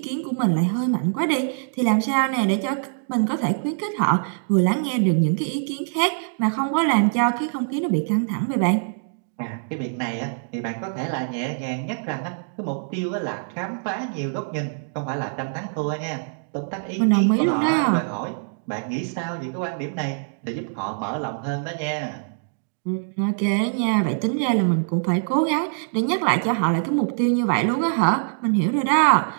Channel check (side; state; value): left; silent; digital silence